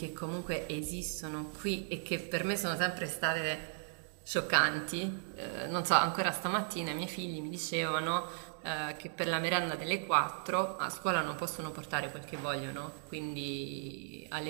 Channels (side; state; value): left; silent; digital silence